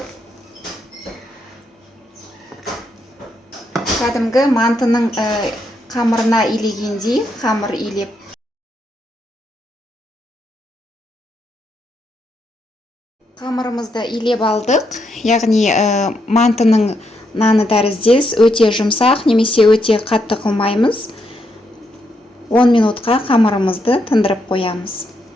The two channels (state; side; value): normal; both; correlation 0.79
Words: кәдімгі мантының қамырына илегендей қамыр илеп, қамырымызды илеп алдық. Яғни мантының наны тәріздес, өте жұмсақ немесе өте қатты қылмаймыз. 10 минутқа қамырымызды тындырып қоямыз.